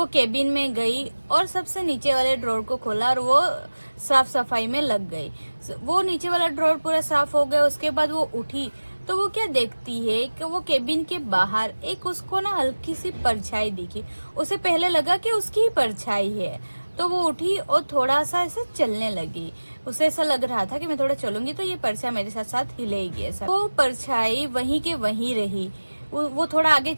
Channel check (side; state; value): both; inverted; correlation -1.00